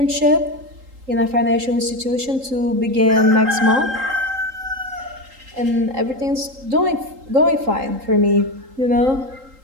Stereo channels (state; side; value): late; left; 3.8 ms